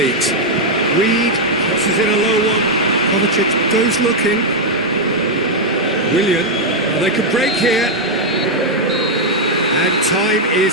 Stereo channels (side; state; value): both; normal; correlation 0.00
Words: Reed crosses in a low one. Kovacic goes looking. Willian, well, they could break here. And time